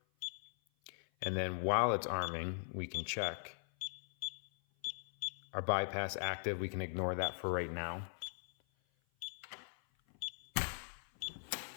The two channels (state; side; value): silent; right; 51 dB below the other